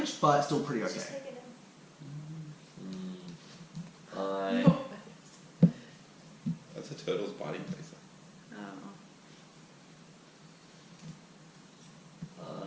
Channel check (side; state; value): both; identical; correlation 1.00